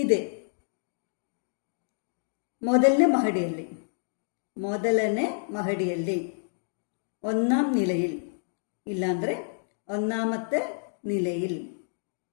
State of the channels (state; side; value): silent; right; digital silence